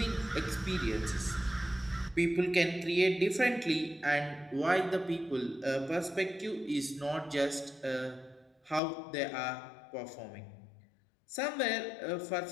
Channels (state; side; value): drops out; right; at 8.8 s